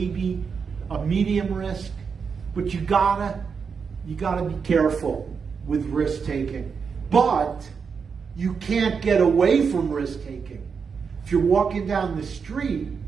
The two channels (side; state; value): left; quieter; 5.9 dB